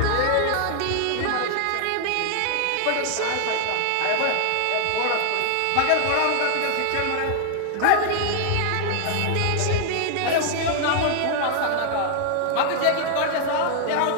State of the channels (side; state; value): both; different; correlation 0.00